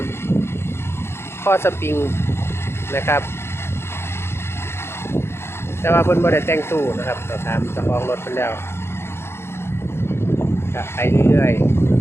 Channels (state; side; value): late; right; 0.12 ms